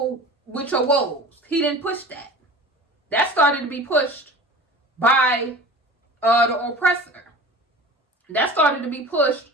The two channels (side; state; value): both; normal; correlation 0.38